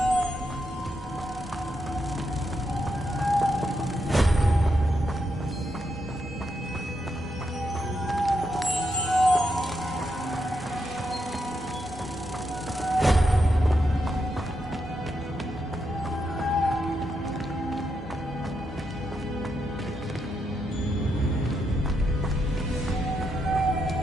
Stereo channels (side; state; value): both; normal; correlation 0.82